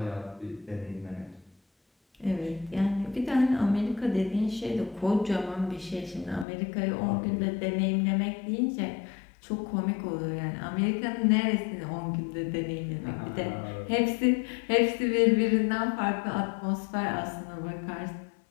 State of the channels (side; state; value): right; drops out; at 6.5 s